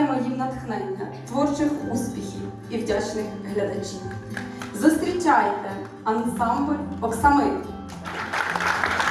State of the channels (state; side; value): identical; both; correlation 1.00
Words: їм натхнення, творчих успіхів і вдячних глядачів. Зустрічайте ансамбль «Оксамит».